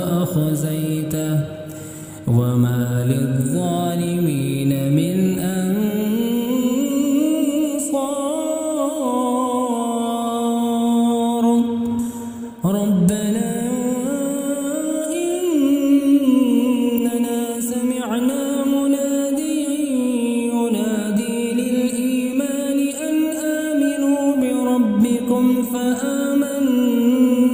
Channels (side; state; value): both; identical; correlation 1.00